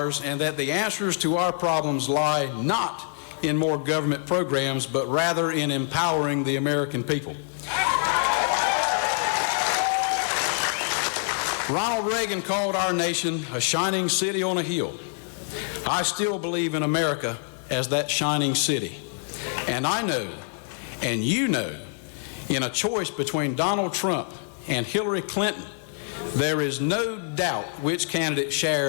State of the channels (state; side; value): silent; right; digital silence